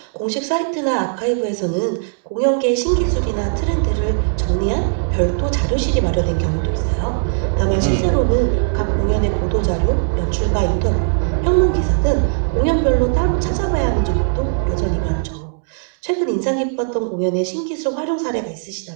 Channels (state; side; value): silent; left; digital silence